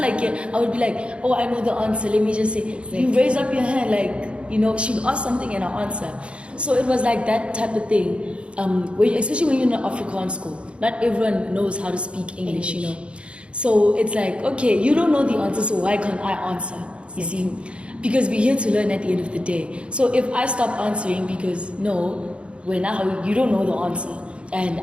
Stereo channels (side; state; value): left; late; 0.058 ms